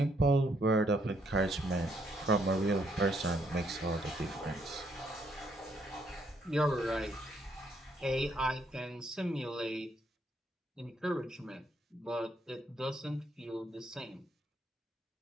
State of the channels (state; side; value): normal; both; correlation 0.72